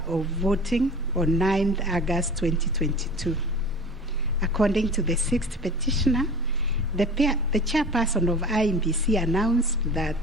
of voting on 9th August 2022. According to the sixth petitioner, the chairperson of IEBC announced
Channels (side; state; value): both; normal; correlation 0.39